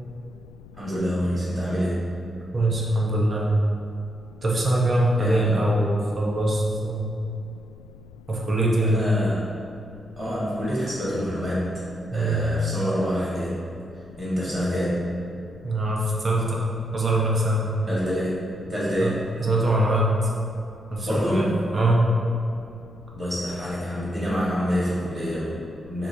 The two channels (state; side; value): noise; left; rumble, 20 dB below the sound